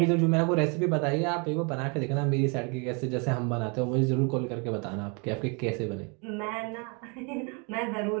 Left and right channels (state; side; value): quieter; left; 33.7 dB